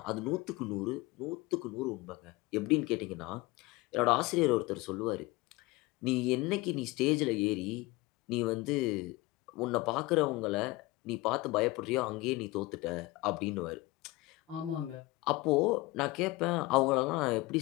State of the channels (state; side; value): quieter; right; 20.9 dB